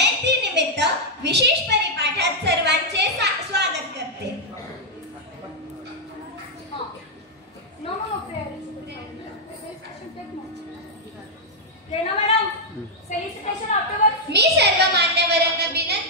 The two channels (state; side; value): normal; both; correlation -0.03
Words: निमित्त विशेष परिपाठात सर्वांचे स्वागत करते. मी सर्व मान्यवरांना